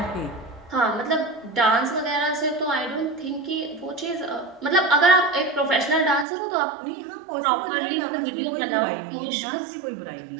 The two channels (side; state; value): left; drops out; at 6.2 s